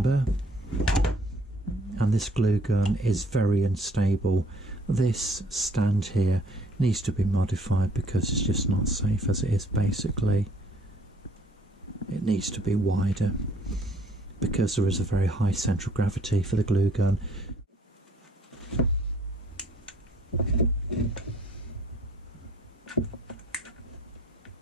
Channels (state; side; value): normal; both; correlation 0.61